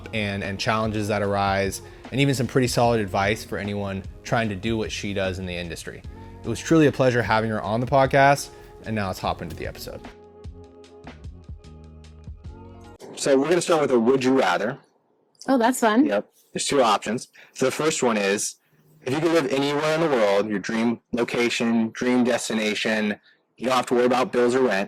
and challenges that arise, and even some pretty solid advice for anyone trying to do what she does in the industry. It was truly a pleasure having her on the podcast, and now let's hop into the episode. So we're going to start with a would you rather. Oh, that's fun. Yep. There's two options. So the first one is, if you could live anywhere in the world, your dream location, dream destination, you don't have to worry about bills or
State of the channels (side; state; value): both; identical; correlation 1.00